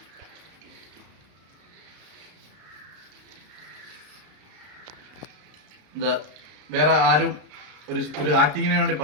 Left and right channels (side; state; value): left; late; 33 ms